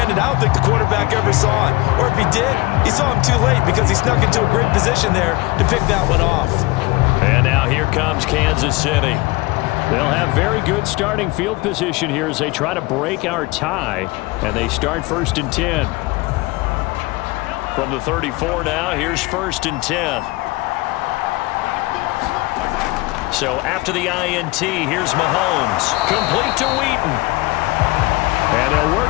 I don't think the quarterback ever saw it. Or if he did, he saw him too late because he snuck into a great position there to pick that one off. And now here comes Kansas City. They'll have very good starting field position here as they try to break our tie. And they start 1st and 10. From the 34 now, here's 1st and 10. So after the INT, here's Mahomes. Complete to Wheaton. And they'll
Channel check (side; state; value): right; quieter; 22.1 dB